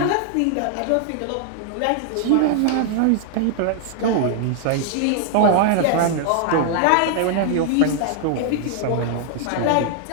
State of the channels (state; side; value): different; both; correlation 0.00